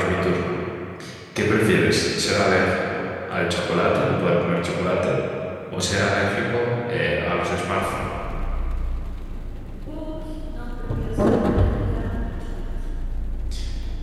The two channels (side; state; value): both; identical; correlation 1.00